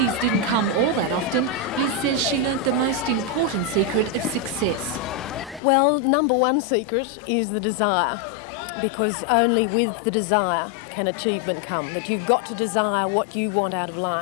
didn't come all that often, Liz says she learnt the most important secret of success. Well, number one secret is the desire, because only with the desire can achievement come. That you've got to desire what you want out of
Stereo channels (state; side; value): drops out; right; at 5.6 s